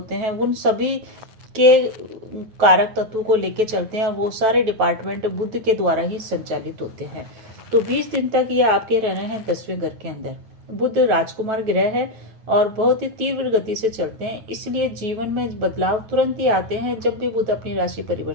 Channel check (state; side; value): late; left; 9.4 ms